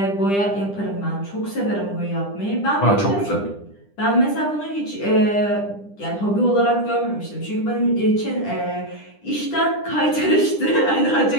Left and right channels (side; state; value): right; late; 10 ms